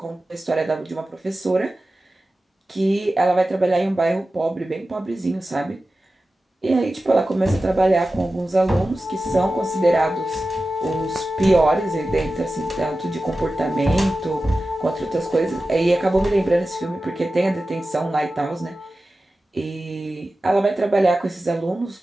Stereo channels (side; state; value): both; normal; correlation 0.94